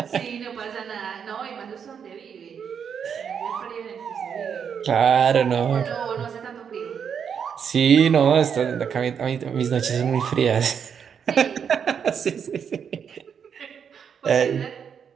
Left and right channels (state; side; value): quieter; left; 7.3 dB